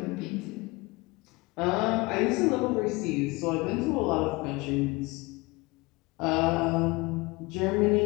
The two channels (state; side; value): quieter; right; 24.2 dB